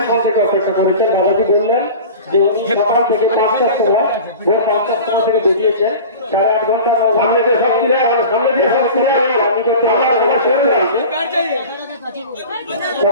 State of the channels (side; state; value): both; inverted; correlation -0.36